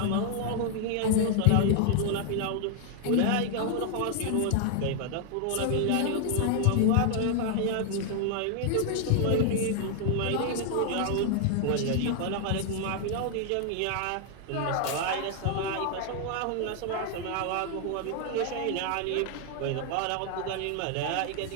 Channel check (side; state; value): both; different; correlation 0.00